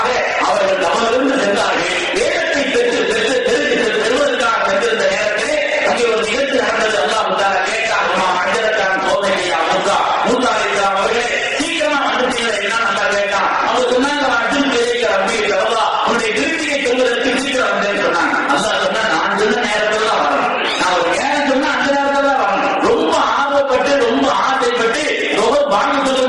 அவர்கள் தவறிருந்து சென்றார்கள். வேதத்தை பெறுவதற்காக சென்றிருந்த நேரத்தில் அங்கே ஒரு நிகழ்ச்சி நடந்தது. அல்லாஹ் கேட்டார், அஞ்சலுக்கான கோபையா மூசா, மூசா அலைஹிஸ்ஸலாம் அவர்களே சீக்கிரமா வந்துட்டீங்களே என்ன நல்லா கேட்டான். அவங்க சொன்னாங்க, அர்ஜுன் பேரைக்கு ரப்பி அல்லா உன்னுடைய விருத்தியை செல்வதற்கு சீக்கிரம் வந்தேன்னு சொன்னாங்க. அல்லாஹ் சொன்னா, நான் சொன்ன நேரத்தில் தான் வரணும், நான் ஒரு நேரம் சொன்னா அந்த நேரத்தில் தான் வரணும். ரொம்ப ஆர்வப்பட்டு ரொம்ப ஆசைப்பட்டு வாங்க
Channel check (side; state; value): both; identical; correlation 1.00